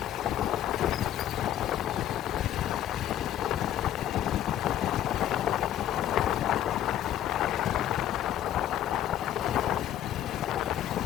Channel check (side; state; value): right; quieter; 11.7 dB